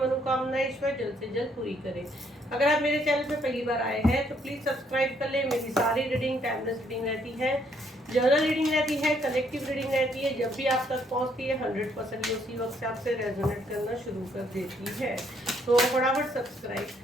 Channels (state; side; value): normal; both; correlation 0.69